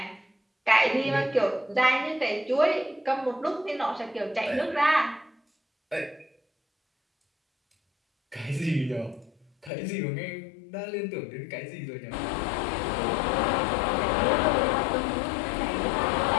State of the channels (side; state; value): right; drops out; at 9.7 s